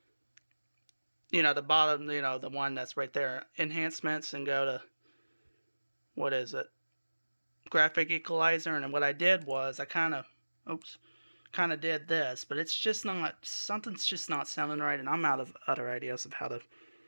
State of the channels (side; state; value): both; inverted; correlation -1.00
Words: the bottom, the one that's right there, enhancements, and go to, what is it? graphic equalizer, and what I did was I kind of did this, but it's just not, something's just not sounding right, and I'm out of other ideas of how to